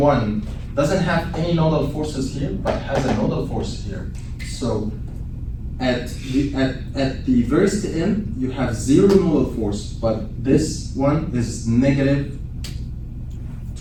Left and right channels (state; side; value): identical; both; correlation 1.00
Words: doesn't have any nodal forces here, but has a nodal force here. So at the first end, you have 0 nodal force, but this one is negative